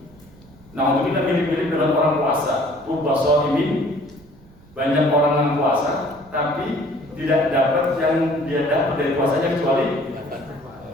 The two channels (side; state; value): right; noise; rumble, 25 dB below the sound